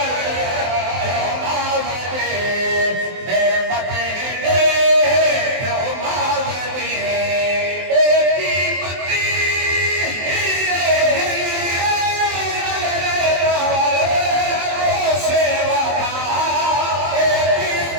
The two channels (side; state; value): left; late; 23 ms